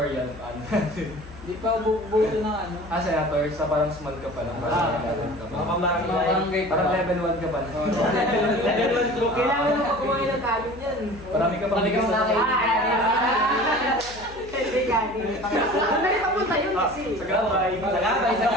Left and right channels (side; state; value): left; noise; hum, 18 dB below the sound